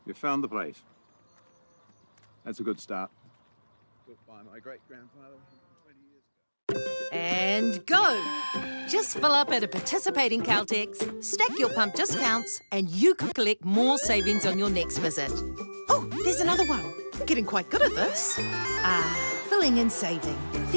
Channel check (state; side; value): inverted; both; correlation -1.00